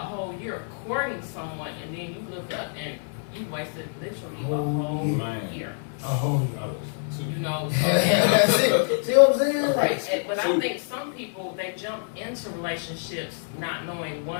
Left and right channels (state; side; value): silent; right; digital silence